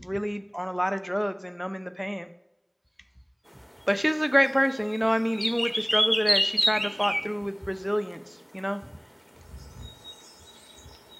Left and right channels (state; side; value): identical; both; correlation 1.00